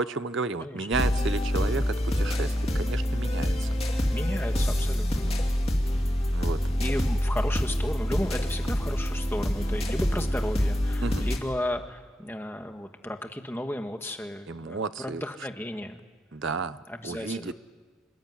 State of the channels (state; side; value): normal; both; correlation 0.86